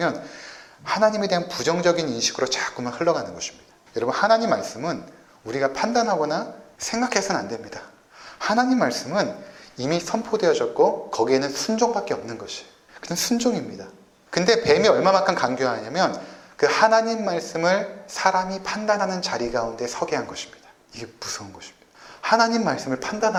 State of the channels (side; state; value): both; identical; correlation 1.00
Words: 하나님에 대한 부정적인 인식으로 자꾸만 흘러가는 것입니다. 여러분, 하나님 말씀은 우리가 판단하거나 생각해서는 안 됩니다. 하나님 말씀은 이미 선포되어졌고 거기에는 순종밖에 없는 것이에요. 그냥 순종입니다. 근데 뱀이 얼마만큼 강조하냐면 그 하나님 말씀을 사람이 판단하는 자리 가운데 서게 한 것입니다. 이게 무서운 것입니다. 하나님 말씀을